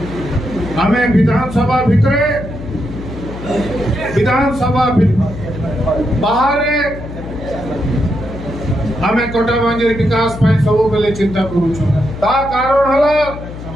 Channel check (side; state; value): left; noise; hum, 11 dB below the sound